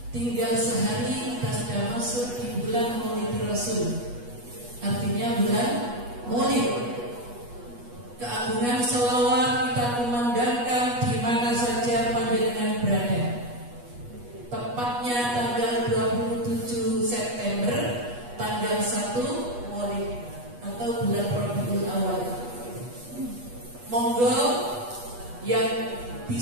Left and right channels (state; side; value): late; left; 8.3 ms